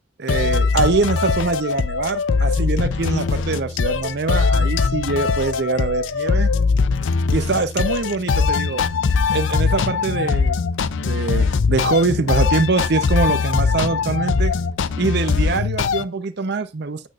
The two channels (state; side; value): normal; both; correlation 0.38